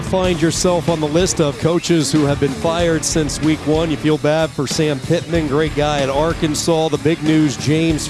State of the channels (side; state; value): both; identical; correlation 1.00